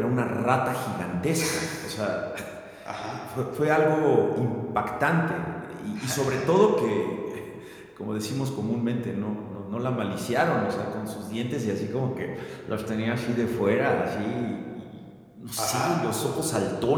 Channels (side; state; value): both; identical; correlation 1.00